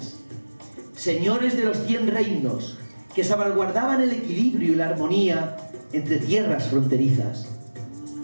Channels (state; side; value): inverted; both; correlation -1.00